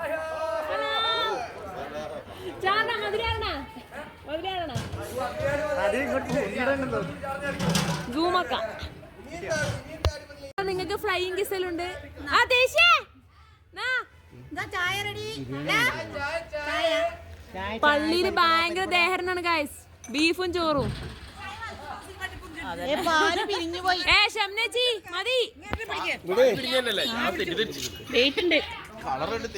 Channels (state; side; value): identical; both; correlation 1.00